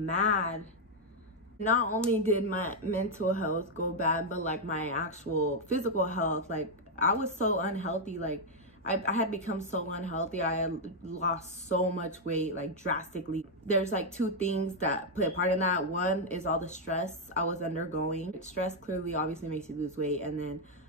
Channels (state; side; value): normal; both; correlation 0.00